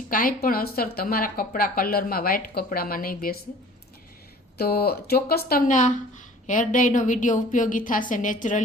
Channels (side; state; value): both; normal; correlation 0.48